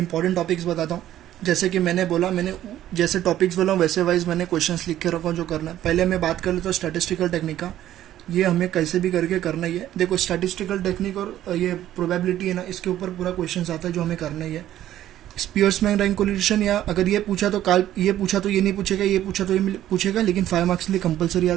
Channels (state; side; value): quieter; left; 12.6 dB